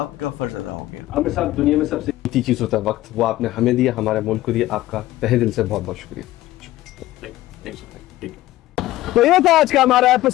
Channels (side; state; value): right; quieter; 15.9 dB